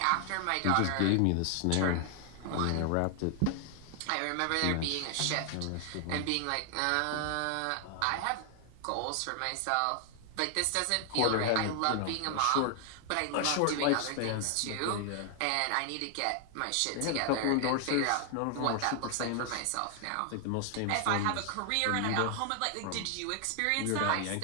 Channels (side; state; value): both; different; correlation 0.00